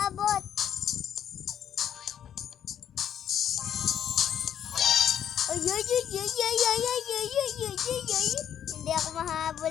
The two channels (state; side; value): quieter; right; 9.6 dB